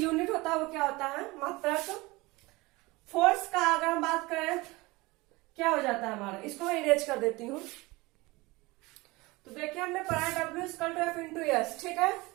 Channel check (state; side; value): quieter; left; 22.5 dB